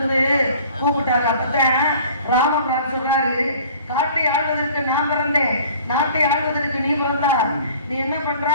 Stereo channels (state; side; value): inverted; both; correlation -0.49